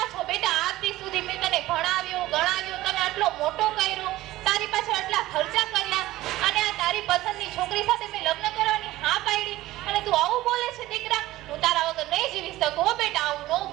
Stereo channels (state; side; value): quieter; left; 16.6 dB